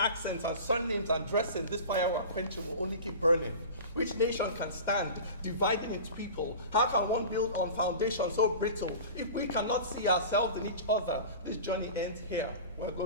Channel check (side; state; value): both; inverted; correlation -0.35